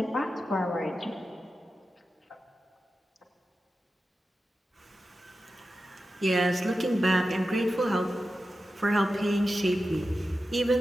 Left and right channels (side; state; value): both; normal; correlation 0.92